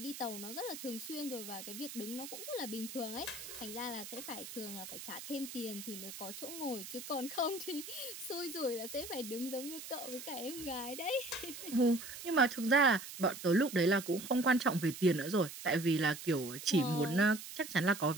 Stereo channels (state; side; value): noise; right; hiss, 11 dB below the sound